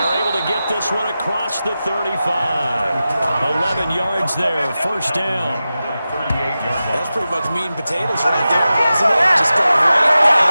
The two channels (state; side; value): inverted; both; correlation -0.94